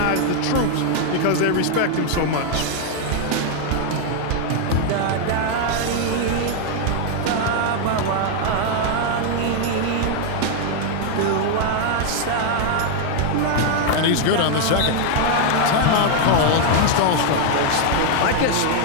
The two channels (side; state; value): both; different; correlation 0.00